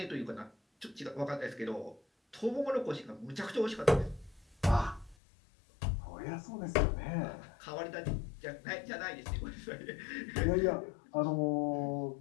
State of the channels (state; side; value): drops out; right; at 5.2 s